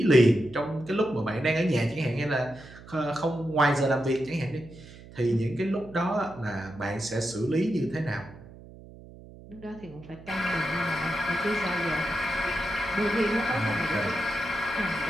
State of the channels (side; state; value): right; noise; hum, 18 dB below the sound